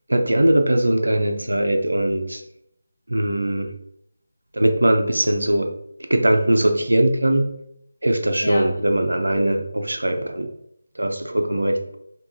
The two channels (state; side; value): inverted; both; correlation -0.97